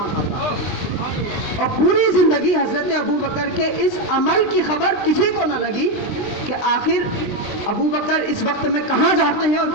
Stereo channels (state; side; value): late; right; 20 ms